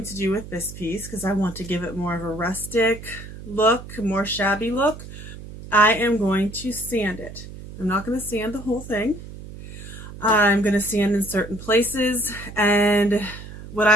to do with this piece, because I want to give it more of a rustic look, more shabby look, I am going to sand it. I'm not going to sand the whole thing. I'm going to sand in certain places, and what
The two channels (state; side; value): noise; right; hum, 13 dB below the sound